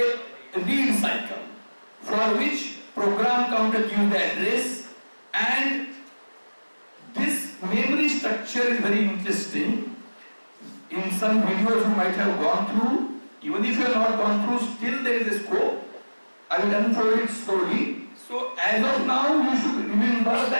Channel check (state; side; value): inverted; both; correlation -1.00